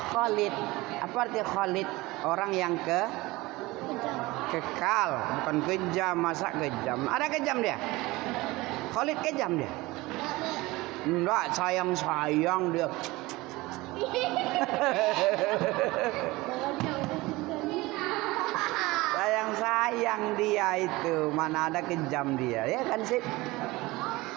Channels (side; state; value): left; quieter; 20.9 dB